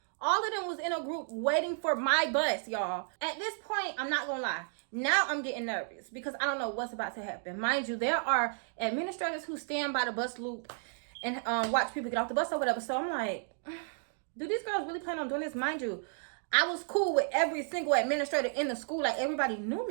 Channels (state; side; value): silent; left; 56 dB below the other